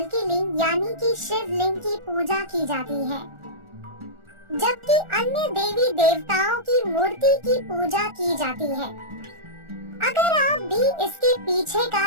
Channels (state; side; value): late; left; 1.4 ms